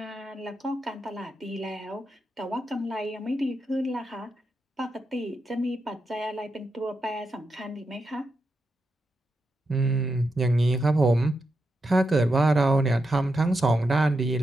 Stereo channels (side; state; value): both; normal; correlation 0.86